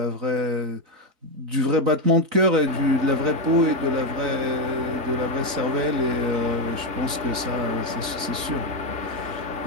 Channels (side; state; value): left; late; 4.0 ms